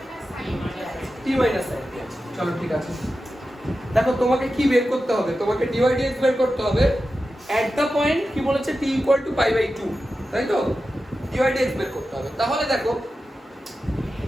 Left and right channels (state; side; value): normal; both; correlation 0.92